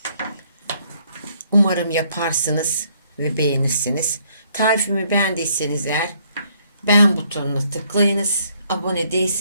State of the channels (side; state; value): both; inverted; correlation -0.68